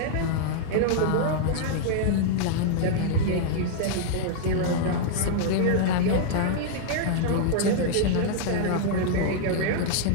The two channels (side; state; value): both; different; correlation -0.01